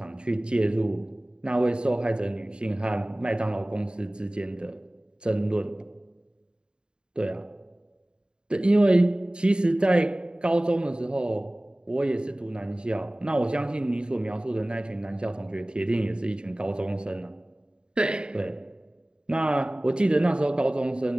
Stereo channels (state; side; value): late; left; 0.050 ms